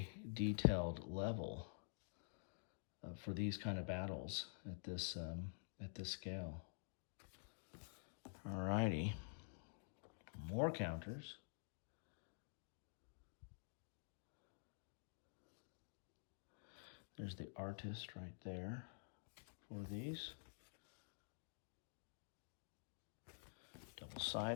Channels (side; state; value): right; silent; digital silence